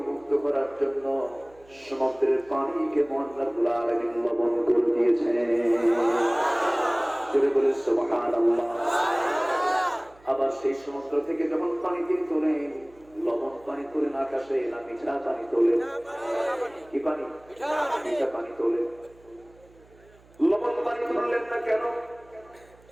মুক্ত করার জন্য সমুদ্রের পানিকে মহান রাব্বুল আলামিন লবণ করে দিয়েছেন। জোরে বলে সুবহানাল্লাহ। আবার সেই সমুদ্র থেকে যখন পানি দিয়ে তোলেন, লবণ পানি তোলেন আকাশে, না মিঠা পানি তোলেন? কি পানি? মিঠা পানি তোলেন। লবণ পানি তুললেন না কেন?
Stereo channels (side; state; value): right; noise; hum, 28 dB below the sound